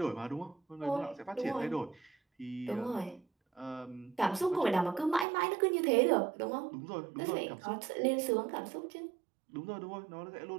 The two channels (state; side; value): drops out; left; at 5.2 s